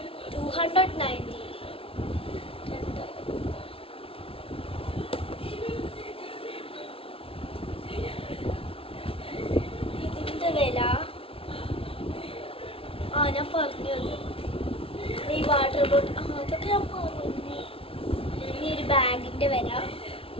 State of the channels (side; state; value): right; late; 0.26 ms